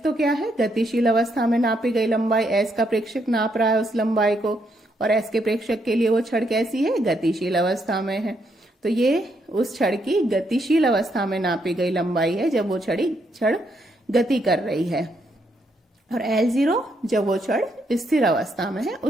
तो क्या है, गतिशील अवस्था में नापी गई लंबाई, S का प्रेक्षक नाप रहा है उस लंबाई को, और S के प्रेक्षक के लिए वो छड़ कैसी है, गतिशील अवस्था में है। तो ये उस छड़ की गतिशील अवस्था में नापी गई लंबाई है जब वो छड़ गति कर रही है, और L0 जब वो छड़ स्थिर अवस्था में है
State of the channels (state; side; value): normal; both; correlation 0.76